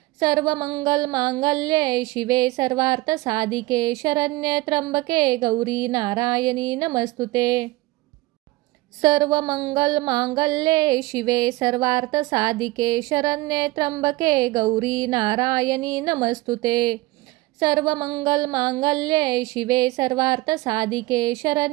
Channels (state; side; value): quieter; left; 19.8 dB